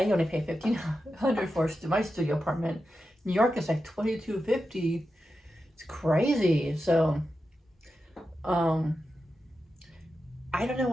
only pay $1,500 for my studio apartment. New York is like $22.50. It's crazy. So, I don't know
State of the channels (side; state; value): both; normal; correlation 0.90